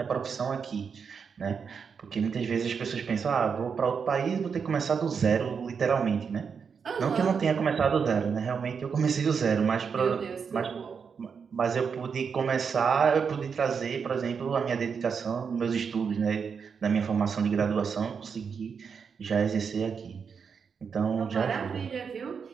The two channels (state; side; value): quieter; left; 6.2 dB